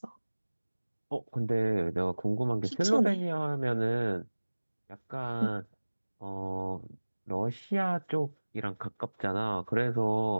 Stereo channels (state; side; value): inverted; both; correlation -1.00